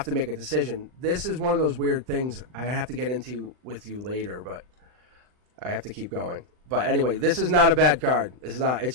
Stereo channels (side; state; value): left; late; 39 ms